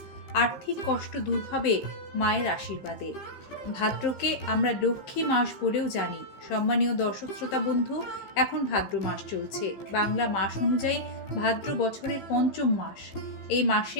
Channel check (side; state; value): right; late; 15 ms